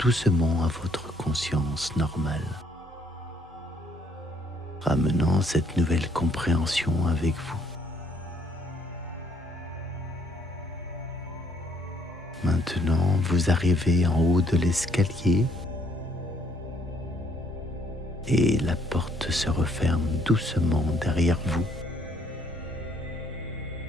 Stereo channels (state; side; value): normal; both; correlation 0.66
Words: à votre conscience normale, ramenant cette nouvelle compréhension avec vous. Maintenant, vous arrivez en haut de l'escalier et la porte se referme doucement derrière vous.